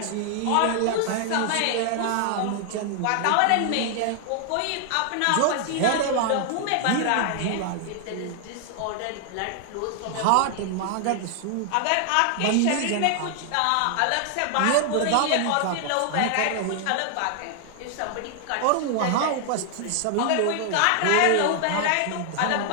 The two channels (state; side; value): different; both; correlation 0.00